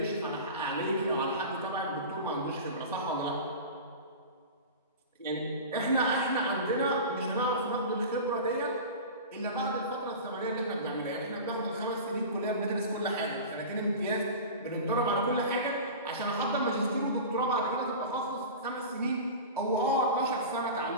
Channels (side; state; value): both; inverted; correlation -0.32